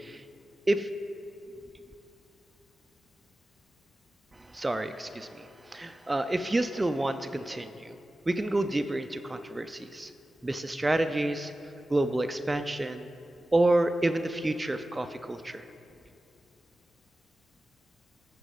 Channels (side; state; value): both; normal; correlation 0.95